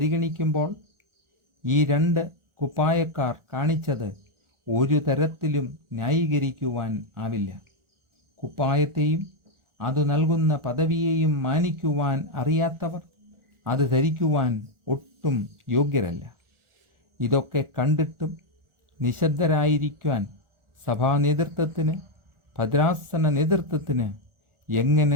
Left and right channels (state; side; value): late; left; 1.4 ms